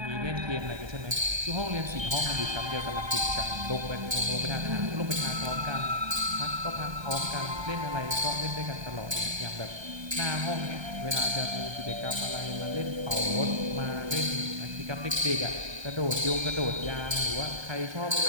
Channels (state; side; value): late; left; 1.2 ms